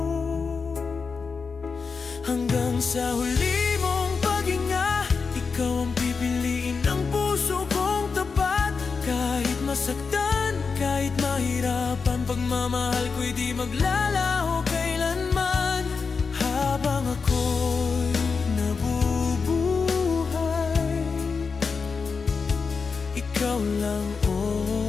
Hanggang sa huli mong paghinga, ikaw ang pipiliin ng puso kong tapat. Kahit masaktan, kahit mahirapan, pagmamahal ko'y di maglalaho kailanman. Habang ako'y nabubuhay, ikaw lang,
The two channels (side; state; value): right; quieter; 5.1 dB